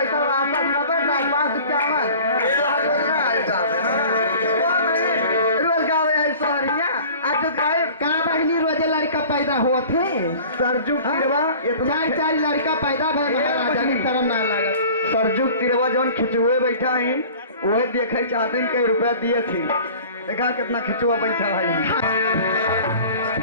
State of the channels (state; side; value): inverted; both; correlation -0.44